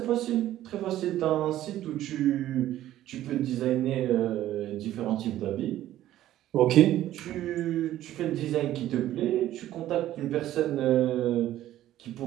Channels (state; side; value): quieter; left; 13.4 dB